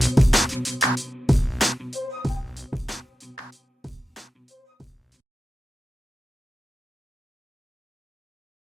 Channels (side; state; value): both; normal; correlation 0.92